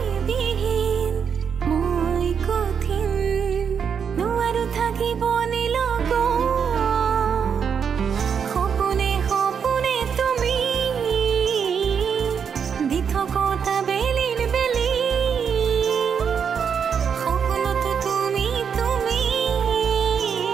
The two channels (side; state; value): left; quieter; 7.0 dB